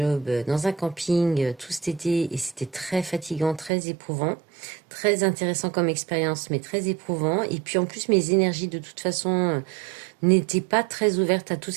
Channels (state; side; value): drops out; left; at 3.7 s